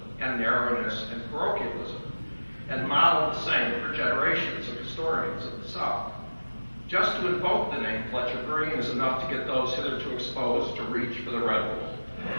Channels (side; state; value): both; inverted; correlation -1.00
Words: and narrowness and parochialism, and modeled the same for generations of historians of the South. Just to invoke the name Fletcher Green is enough to get those hitherto exposed to reach for the Red Bull.